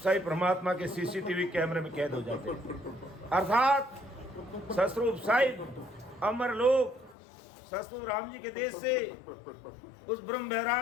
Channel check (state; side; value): drops out; right; at 7.2 s